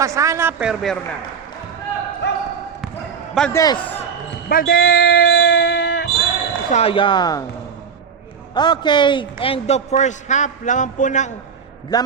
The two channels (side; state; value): left; quieter; 6.4 dB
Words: Pasana, pero meron na. Valdez. Valdez! Sayang. Okay, end of first half. Laman